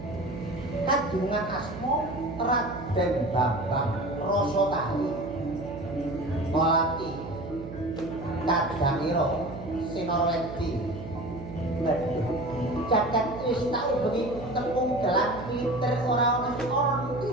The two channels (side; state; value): right; noise; hum, 11 dB below the sound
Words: Kadungan asma Raden Bambang Rasatali Melati Kadangiro Sinorwedi jagat wis tak ubengi tepung gelang liter ora ana